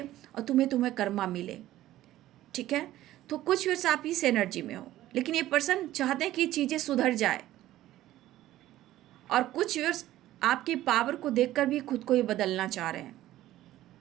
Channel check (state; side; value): quieter; left; 14.5 dB